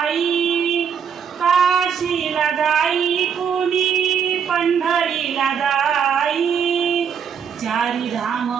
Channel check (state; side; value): quieter; left; 7.4 dB